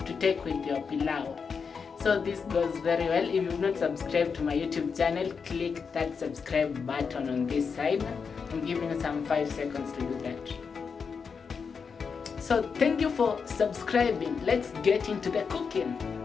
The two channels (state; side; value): quieter; right; 5.7 dB